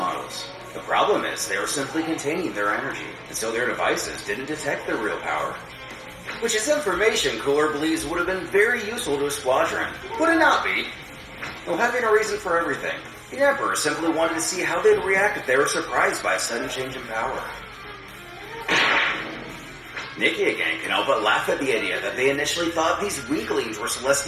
The problem is they are simply containing their energy, and so their devices didn't detect their real power. Which is information Cooler believes would have been very useful to his squadron. Would it not be? Though having a reason for everything, the Emperor simply wanted to see how they'd react if they were surprised by a sudden change in power. Nikki again can help but laugh at the idea that they initially thought these weaklings were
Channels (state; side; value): identical; both; correlation 1.00